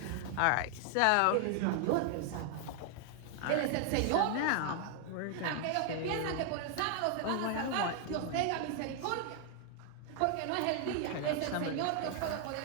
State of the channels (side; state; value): both; different; correlation 0.00